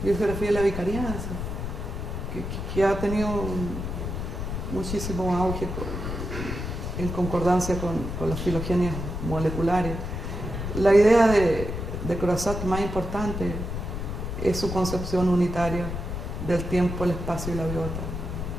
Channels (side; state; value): left; noise; rumble, 5 dB below the sound